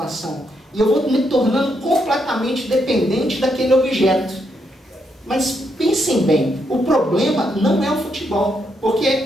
E eu vou me tornando completamente dependente daquele objeto. Mas pensem bem, o problema não é o futebol,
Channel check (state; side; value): normal; both; correlation 0.78